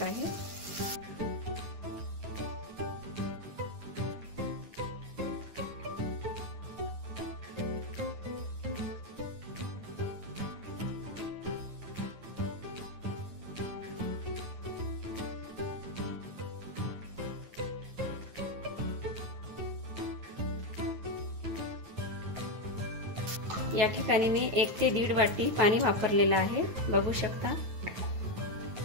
आहे। या ठिकाणी मी 1 ते 1.5 वाटी पाणी वापरलेलं आहे। बघू शकता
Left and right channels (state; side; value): late; left; 9.4 ms